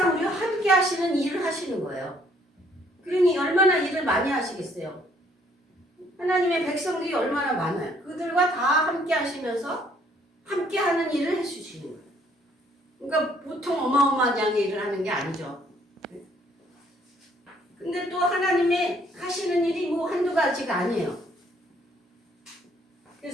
우리와 함께 하시는 일을 하시는 거예요. 그러니 얼마나 일을 많이 하시겠어요. 하나님의 백성들이 얼마나 많아요. 그들과 다 함께 하시면서 함께 하는 일을 해주시는 거예요. 그러니까 보통 어마어마하게 일을 하는 게 아니죠. 근데 또 하나님의 하시는 일이 뭐 한두 가지가 아니에요.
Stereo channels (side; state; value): both; normal; correlation 0.64